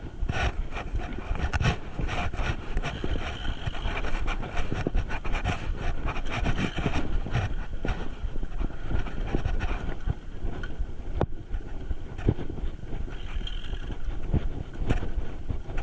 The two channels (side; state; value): both; identical; correlation 1.00